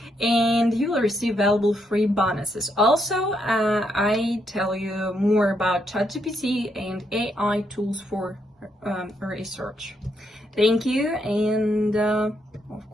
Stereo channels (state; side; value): normal; both; correlation 0.77